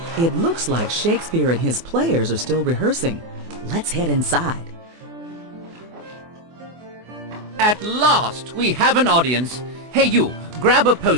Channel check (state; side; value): late; left; 24 ms